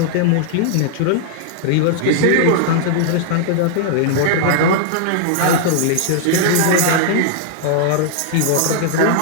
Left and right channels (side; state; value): both; different; correlation -0.01